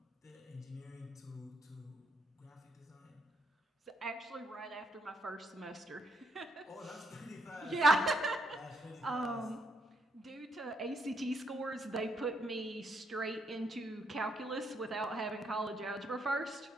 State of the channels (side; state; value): both; normal; correlation 0.75